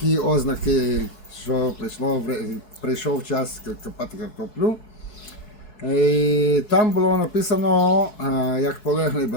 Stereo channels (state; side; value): late; right; 4.6 ms